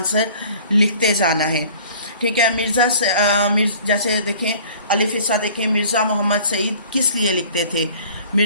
لکھتے جانا ہے۔ ٹھیک ہے، جیسے دیکھیں الف حصہ دیکھیں، مرزا محمد سعید کس لیے لکھتے تھے؟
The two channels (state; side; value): inverted; both; correlation -0.49